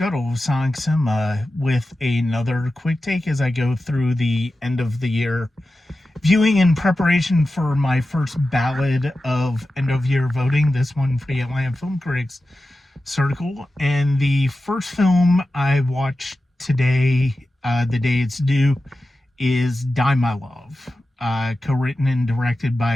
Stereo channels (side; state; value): both; normal; correlation 0.93